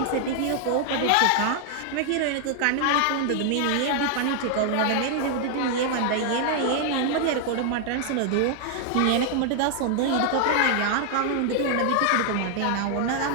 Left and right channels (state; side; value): different; both; correlation 0.00